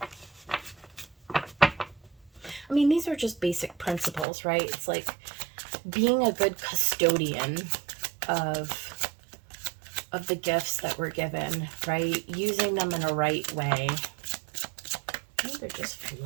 I mean, these are just basic principles, right? It's like being a good custodian of the gifts that we're given, right? Using them in a right way. Oh, they're just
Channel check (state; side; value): drops out; left; at 4.2 s